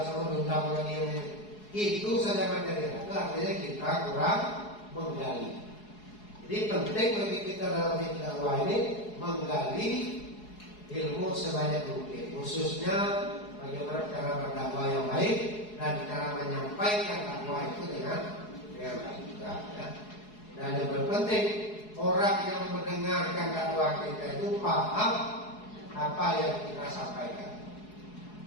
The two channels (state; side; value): late; right; 4.7 ms